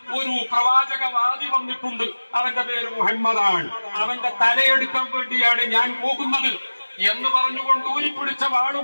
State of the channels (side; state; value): both; inverted; correlation -1.00